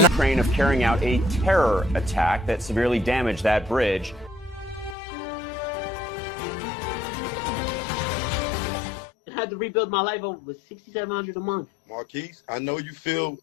Ukraine of carrying out a terror attack that severely damaged that bridge. I had to rebuild my life over with $6,700 a month. Marquise, I know you feel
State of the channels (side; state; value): right; drops out; at 5.0 s